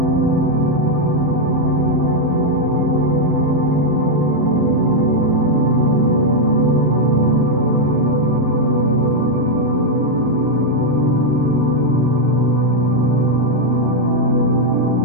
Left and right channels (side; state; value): both; normal; correlation 0.00